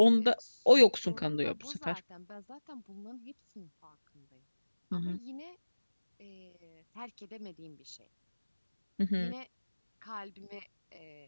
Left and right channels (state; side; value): inverted; both; correlation -1.00